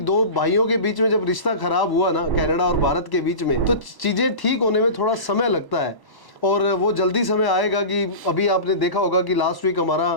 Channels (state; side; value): late; right; 1.0 ms